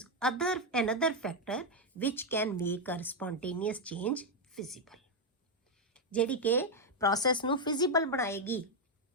another factor which can make a spontaneous change feasible। ਜਿਹੜੀ ਕਿ ਪ੍ਰੋਸੈਸ ਨੂੰ ਫਿਜ਼ੀਬਲ ਬਣਾਏਗੀ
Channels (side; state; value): both; normal; correlation 0.02